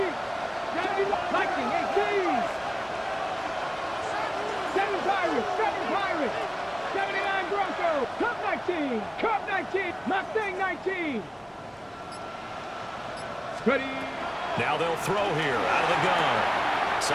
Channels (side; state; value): both; identical; correlation 1.00